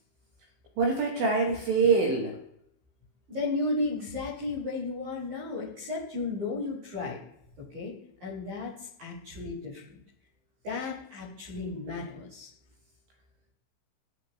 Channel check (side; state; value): left; late; 15 ms